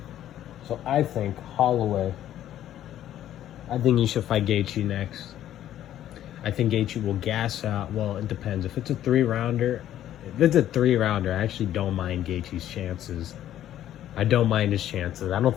So I think Holloway, I think he should fight Gaethje next. I think Gaethje will gas out. Well, it depends. If it's a 3-rounder, I actually don't mind Gaethje's chances. I don't mind his chances. I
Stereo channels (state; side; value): quieter; right; 11.9 dB